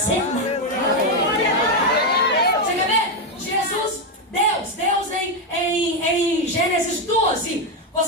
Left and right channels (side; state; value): both; normal; correlation 0.06